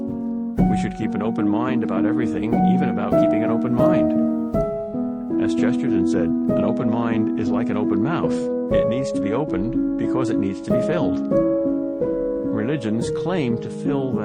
We should keep an open mind about everything, even about keeping an open mind. As Chesterton said, an open mind is like an open mouth. It needs to be opened because it needs to be filled. Religions claim to fill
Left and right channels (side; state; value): both; identical; correlation 1.00